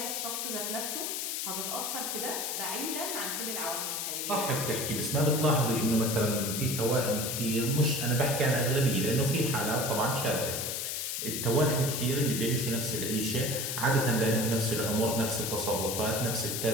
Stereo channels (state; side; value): noise; left; hiss, 2 dB below the sound